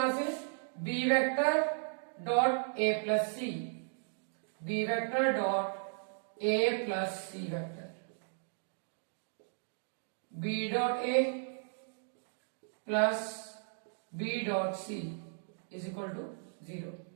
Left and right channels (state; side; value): silent; left; digital silence